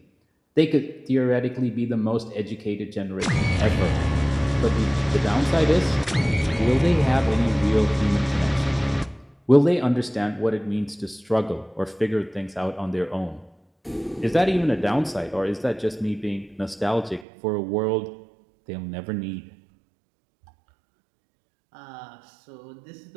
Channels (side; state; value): left; drops out; at 17.2 s